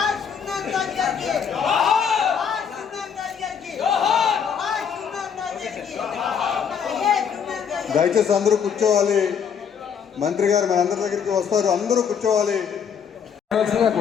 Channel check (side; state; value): right; quieter; 7.2 dB